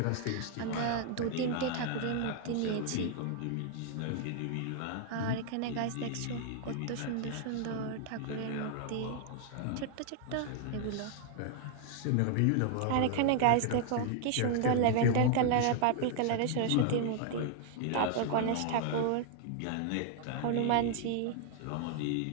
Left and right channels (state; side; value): different; both; correlation 0.00